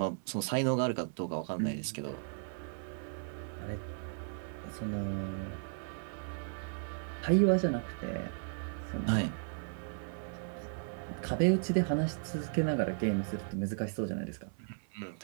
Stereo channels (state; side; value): silent; left; 54 dB below the other